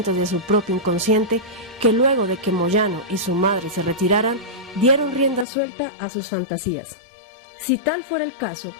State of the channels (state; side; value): drops out; right; at 5.5 s